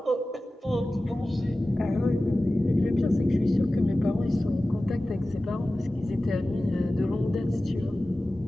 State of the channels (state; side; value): normal; both; correlation 0.96